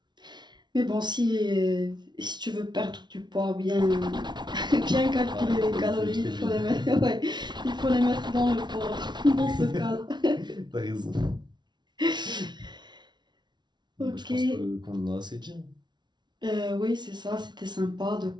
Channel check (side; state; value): left; late; 0.21 ms